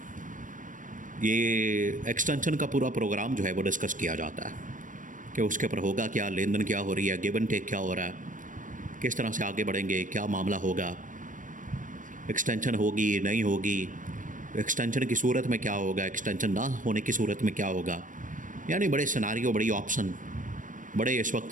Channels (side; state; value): left; late; 0.38 ms